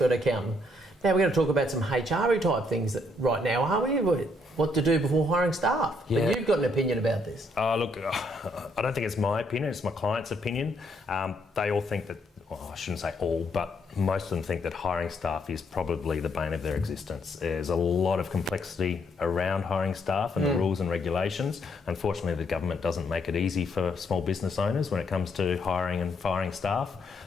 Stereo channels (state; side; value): normal; both; correlation 0.72